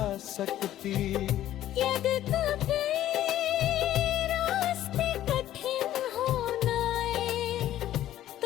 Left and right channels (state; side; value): quieter; right; 12.9 dB